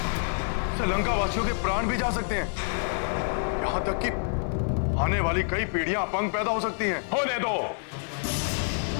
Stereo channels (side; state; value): right; silent; 60 dB below the other